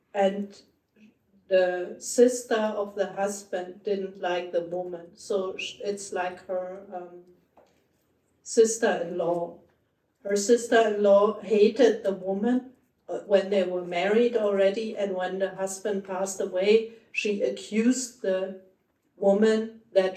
and the sister of the husband didn't like the woman, so it's like her sister-in-law. Her sister-in-law hated the woman when they were married already, and when the husband passed away, she accused the woman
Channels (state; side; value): identical; both; correlation 1.00